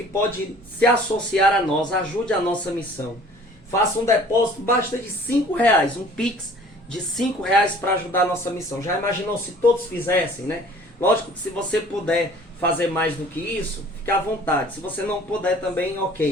pode se associar a nós, ajude a nossa missão. Faça um depósito, basta de R$5, um Pix de R$5 para ajudar a nossa missão. Já imaginou se todos fizessem, né? Lógico que se você puder fazer mais do que isso, fica à vontade. Se você não puder também,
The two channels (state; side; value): normal; both; correlation 0.51